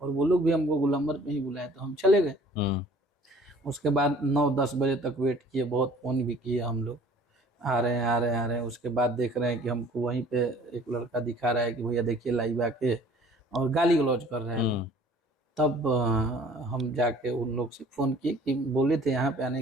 और वो लोग भी हमको गोलंबर पे ही बुलाए, तो हम चले गए। उसके बाद 9-10 बजे तक वेट किए, बहुत फोन भी किए हम लोग, आ रहे हैं। उसके बाद देख रहे हैं कि हमको वहीं पे एक लड़का दिखा रहा है कि भैया देखिए लाइव आके, और गाली गलौज कर रहे हैं। तब हम जाके उन लोग से फोन किए कि बोले थे यहाँ पे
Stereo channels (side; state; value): both; normal; correlation 0.52